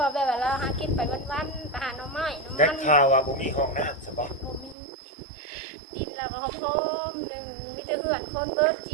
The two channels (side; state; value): left; drops out; at 4.8 s